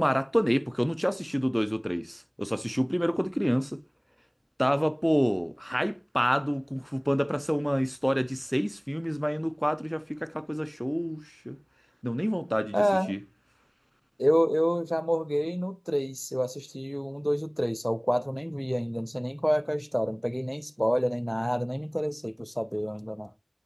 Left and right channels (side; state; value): both; identical; correlation 1.00